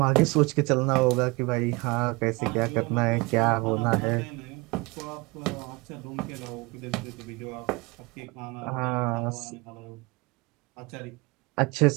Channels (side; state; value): left; quieter; 25.4 dB